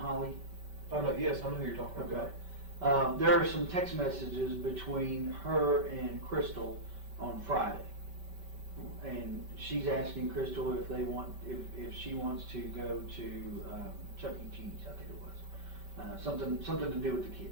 Yes, I know who you're talking Okay. about. There are some text messages between her and Crystal on Friday. And she's asking Crystal if she wants to go to Chuck E. Cheese, I think it was. Something to do with the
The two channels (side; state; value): left; late; 5.2 ms